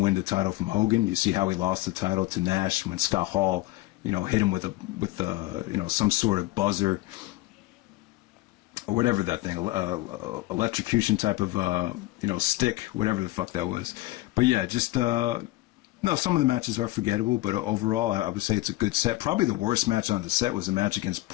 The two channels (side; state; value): right; quieter; 18.2 dB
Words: win the title from Hogan. You see how he lost the title to Nash when Scott Hall, you know, hit him with you know, some sort of buzzer or whatever that thing, electrocution type of you know, stick, whatever the fuck that was. But yeah, just no, some of the matches are forgettable, but overall, I would say it's a good set. Probably the worst match on the set was a match against